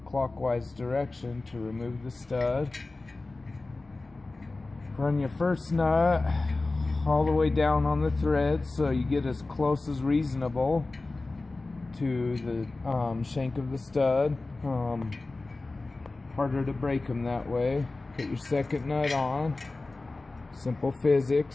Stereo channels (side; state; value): right; quieter; 3.3 dB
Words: direction to remove the stud. Run your first nut all the way down on the thread so you get as close as reasonable to the shank of the stud. Harder to break them that way. Put your second nut on. Simple